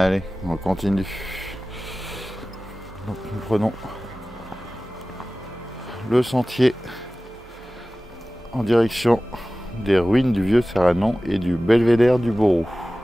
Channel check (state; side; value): normal; both; correlation 0.97